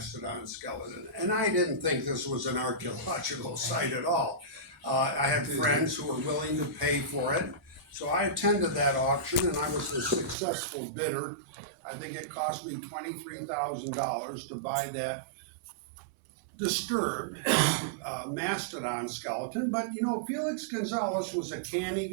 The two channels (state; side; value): drops out; left; at 10.4 s